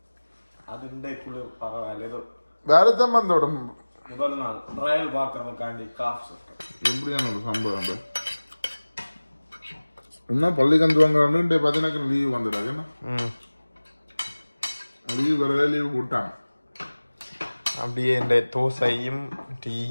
அது வேறதான் வந்தோட முதல் நாள் ட்ரையல் பார்க்கறதுக்காண்டி காஃப் எப்படியான ஒரு சம்பவம் என்ன பள்ளிக்கு வாங்குறான்னு பதினக்கு லீவ் வந்துடாது என்ன லீவ் வரவே லீவ் போட்டாங்க அப்படியே இந்த தோசையும்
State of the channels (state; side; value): inverted; both; correlation -1.00